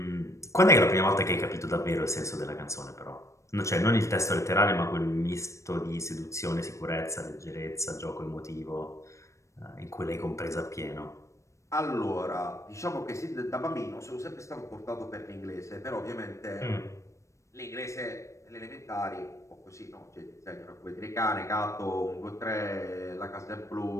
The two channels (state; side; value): late; right; 0.15 ms